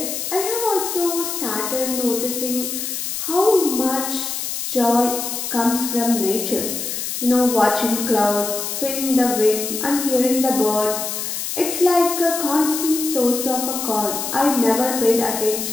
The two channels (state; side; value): noise; left; hiss, 4 dB below the sound